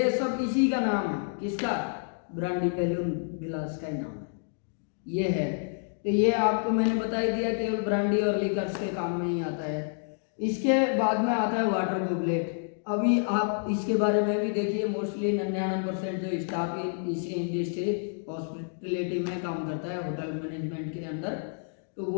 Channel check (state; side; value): silent; right; digital silence